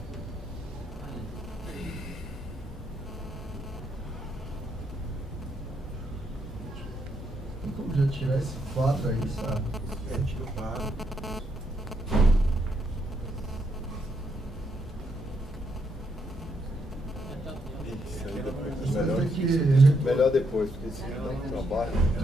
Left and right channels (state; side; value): normal; both; correlation 0.77